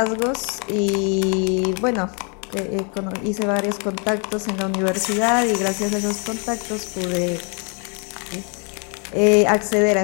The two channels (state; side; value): quieter; right; 36.2 dB